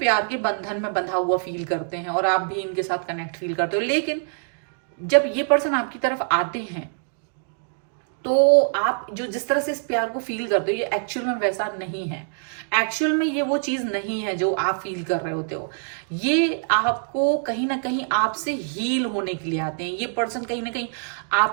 के बंधन में बंधा हुआ फील करते हैं, और आप भी इनके साथ कनेक्ट फील करते हो। लेकिन जब ये पर्सन आपकी तरफ आते हैं तो आप जो जिस तरह से इस प्यार को फील करते हो ये एक्चुअल में वैसा नहीं है। एक्चुअल में ये वो चीज नहीं है जो आप फील कर रहे होते हो। ये आपको कहीं ना कहीं आपसे हील होने के लिए आते हैं। ये पर्सन कहीं ना कहीं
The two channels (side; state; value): left; silent; digital silence